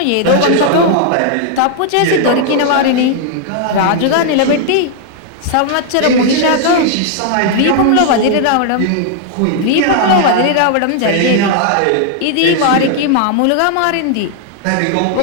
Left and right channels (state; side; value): different; both; correlation 0.00